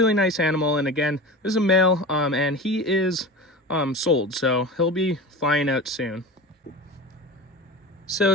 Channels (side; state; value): both; normal; correlation 0.31